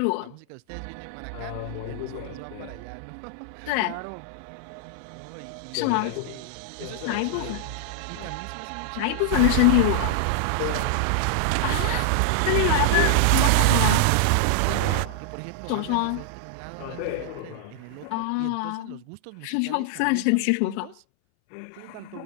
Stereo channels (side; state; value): both; different; correlation -0.01